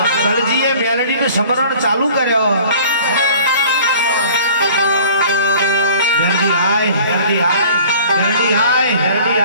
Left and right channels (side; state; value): both; inverted; correlation -0.48